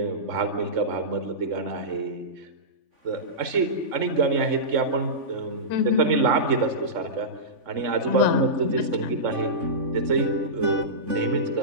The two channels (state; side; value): late; left; 3.5 ms